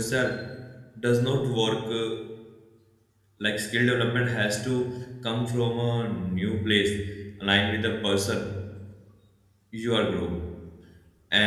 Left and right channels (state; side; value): identical; both; correlation 1.00